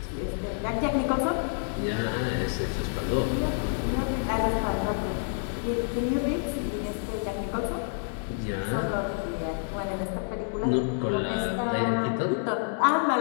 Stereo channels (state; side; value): silent; right; digital silence